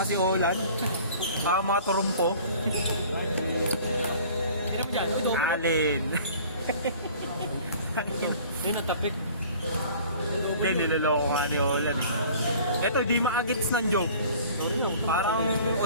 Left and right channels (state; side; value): inverted; both; correlation -0.48